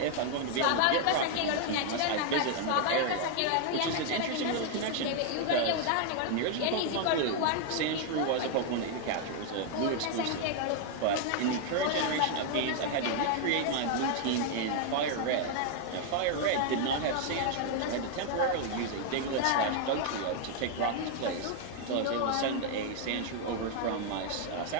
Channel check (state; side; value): different; both; correlation 0.00